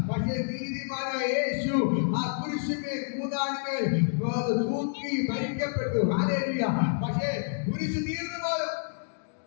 പക്ഷേ നീതിമാനായ യേശു ആ കുരിശിന്മേൽ 3 ആണിമേൽ തൂക്കി മരിക്കപ്പെട്ടു. ഹല്ലേലൂയ. പക്ഷേ കുരിശ് തീർന്നു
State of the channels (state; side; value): silent; right; digital silence